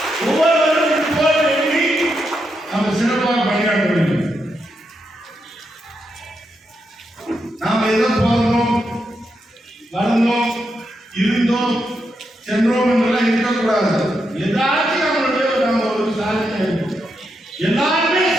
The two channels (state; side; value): normal; both; correlation 0.83